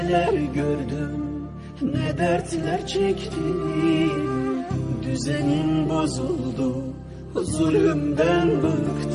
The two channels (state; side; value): identical; both; correlation 1.00